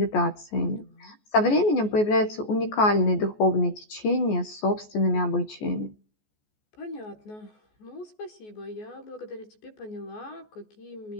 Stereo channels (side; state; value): right; late; 14 ms